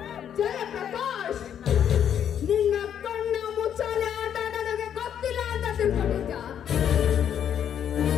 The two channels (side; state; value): right; quieter; 9.2 dB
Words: ಜಯಪ್ರಕಾಶ್, ನಿನ್ನ ಕಣ್ಣ ಮುಚ್ಚಾಲೆ ಆಟ ನನಗೆ ಗೊತ್ತಿಲ್ಲ ಅಂತ ತಿಳ್ಕೊಂಡಿದ್ದ.